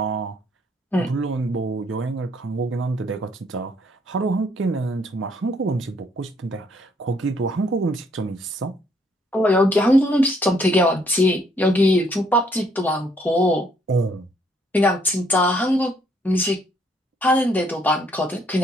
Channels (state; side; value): normal; both; correlation 0.67